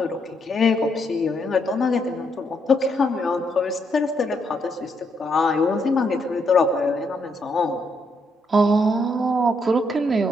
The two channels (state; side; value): normal; both; correlation 0.76